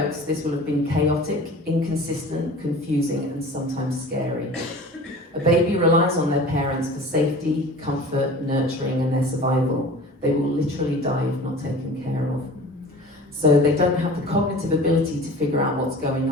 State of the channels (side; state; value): both; normal; correlation 0.41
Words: this will have been chaotic, inconsistent, confusing, and sometimes scary. A baby relies on their parents for safety, comfort, nurturing, and their survival. They will literally die if not taken care of. So they don't have the cognitive ability to figure out what's going